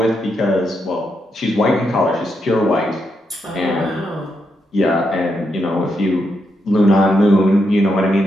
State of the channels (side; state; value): both; normal; correlation 0.81